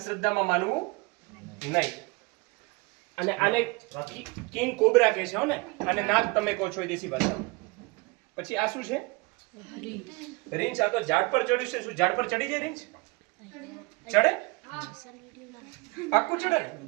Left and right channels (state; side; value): quieter; left; 26.7 dB